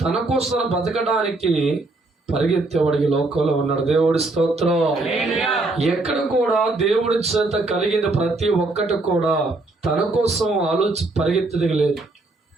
తన కోసం బతకడానికి పరిగెత్తేవాడికి లోకంలో ఉన్నాడు. దేవుడి స్తోత్రం. ఎక్కడ కూడా దేవుడి చేత కలిగిన ప్రతి ఒక్కటి కూడా తన కోసం పరిగెత్తడం లేదు.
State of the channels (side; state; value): left; quieter; 3.1 dB